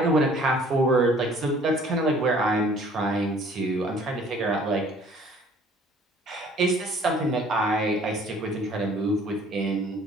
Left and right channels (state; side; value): normal; both; correlation 0.54